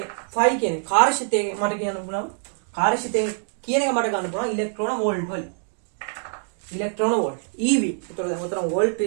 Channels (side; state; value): left; silent; 62 dB below the other